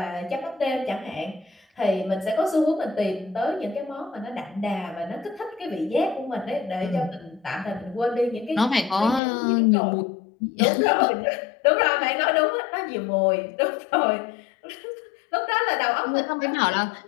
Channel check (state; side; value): drops out; right; at 9.2 s